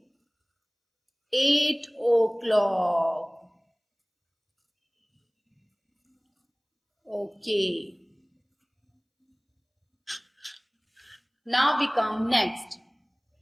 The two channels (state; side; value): identical; both; correlation 1.00